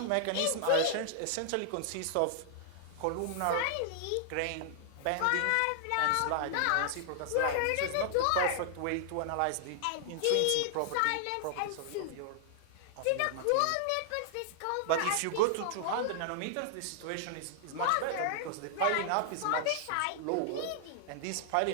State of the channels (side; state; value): both; different; correlation -0.01